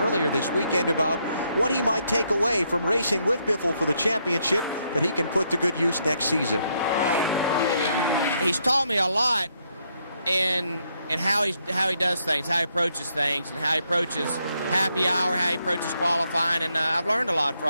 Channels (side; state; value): both; inverted; correlation -0.76